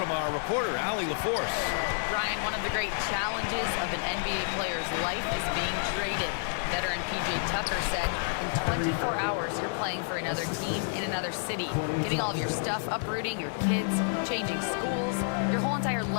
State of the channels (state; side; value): silent; right; 58 dB below the other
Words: our reporter, Allie LaForce. Brian, one of the great challenges of an NBA player's life is being traded. Veteran P.J. Tucker said, in 24 hours, you're playing for another team in another city, getting all of your stuff, uprooting your kids, changing schools. Your whole entire